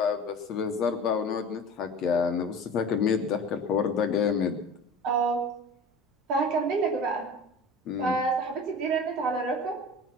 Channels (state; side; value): normal; both; correlation 0.36